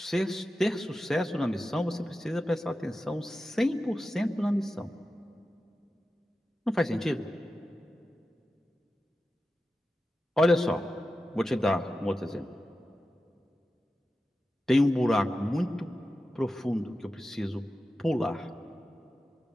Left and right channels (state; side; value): normal; both; correlation 0.92